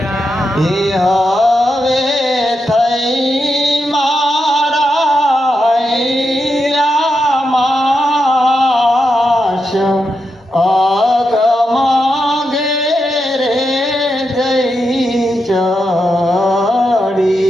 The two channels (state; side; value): normal; both; correlation 0.86